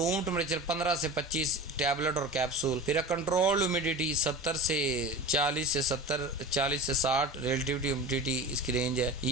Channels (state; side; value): normal; both; correlation 0.32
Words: टेम्परेचर 15 से 25 टैबलेट और कैप्सूल। फिर है कंट्रोल ह्यूमिडिटी 70 से 40 से 60 रिलेटिविटी ह्यूमिडिटी इसकी रेंज है।